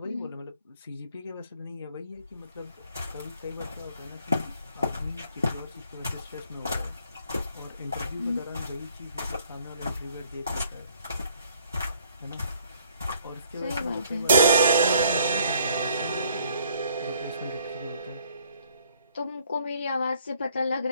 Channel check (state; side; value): inverted; both; correlation -0.64